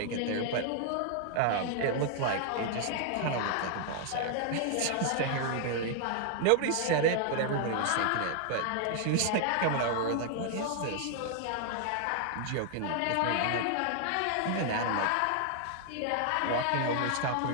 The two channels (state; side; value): different; both; correlation 0.00